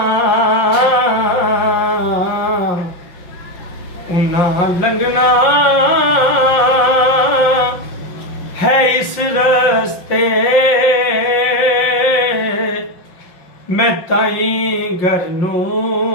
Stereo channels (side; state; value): right; late; 5.6 ms